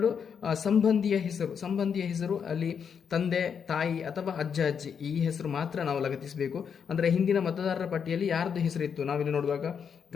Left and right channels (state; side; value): quieter; right; 7.0 dB